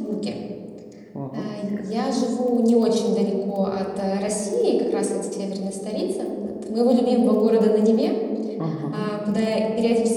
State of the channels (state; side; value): identical; both; correlation 1.00